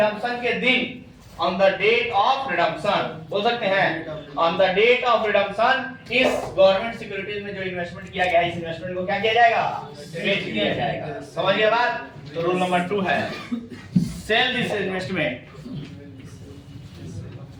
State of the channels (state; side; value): identical; both; correlation 1.00